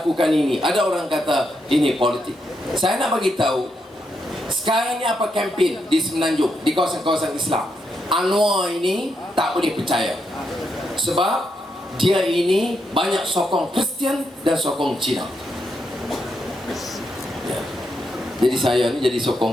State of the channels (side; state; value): both; normal; correlation 0.81